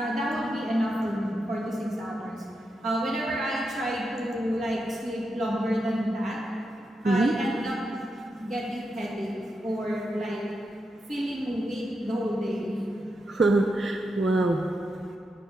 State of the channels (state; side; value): normal; both; correlation 0.86